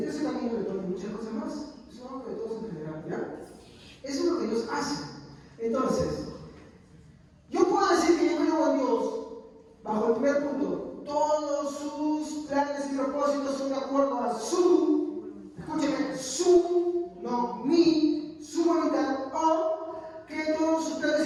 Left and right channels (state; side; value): identical; both; correlation 1.00